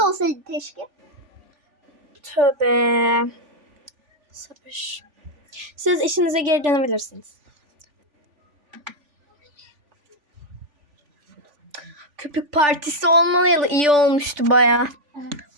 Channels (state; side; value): late; left; 3.5 ms